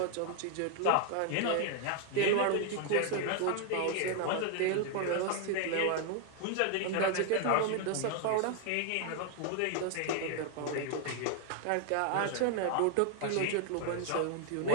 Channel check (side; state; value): both; different; correlation 0.00